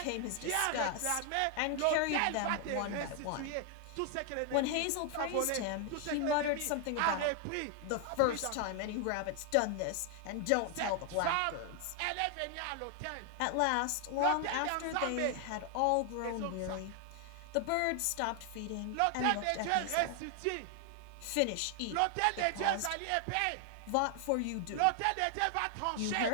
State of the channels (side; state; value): both; different; correlation 0.00